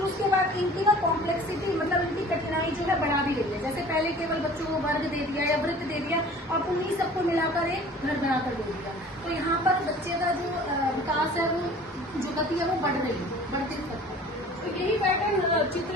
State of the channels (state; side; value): normal; both; correlation 0.46